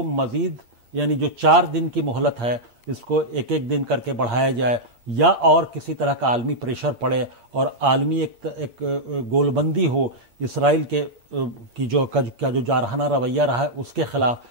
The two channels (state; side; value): late; left; 8.6 ms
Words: مزید، یعنی جو 4 دن کی مہلت ہے اس کو ایک دن کر کے بڑھایا جائے، یا اور کسی طرح کا عالمی پریشر پڑے اور عالمی ایک گول بندی ہو اسرائیل کی جو جارحانہ رویہ رہا ہے اس کے خلاف،